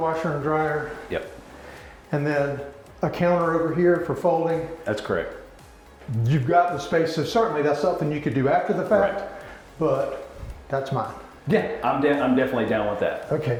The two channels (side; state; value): both; identical; correlation 1.00